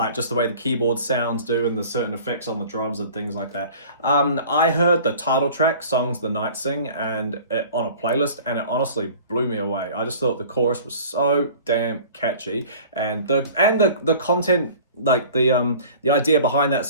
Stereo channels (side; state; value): both; inverted; correlation -0.45